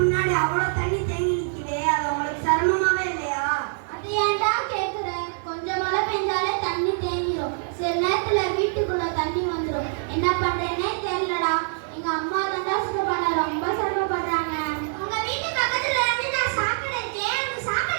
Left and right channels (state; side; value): silent; left; 62 dB below the other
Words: அவ்வளவு தண்ணி தேங்கி நிக்குதே, அது உங்களுக்கு சிரமமாவே இல்லையா? அது ஏன்டா கேக்குற? கொஞ்சம் மழை பெஞ்சாலே தண்ணி தேங்கிரும். சில நேரத்துல வீட்டுக்குள்ள தண்ணி வந்துடும். என்ன பண்றேனே தெரியலடா. எங்க அம்மா தாண்டா சுத்தப்பட ரொம்ப சிரமப்படுறாங்க. உங்க வீட்டு பக்கத்துல இருந்து நான் சாக்கடை இருக்கேன். அந்த